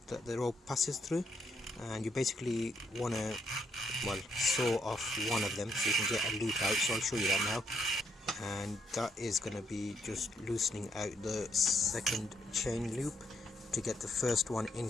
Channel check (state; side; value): normal; both; correlation 0.75